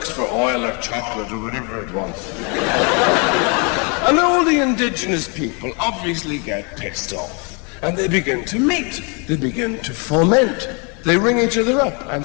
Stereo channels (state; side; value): quieter; right; 34.2 dB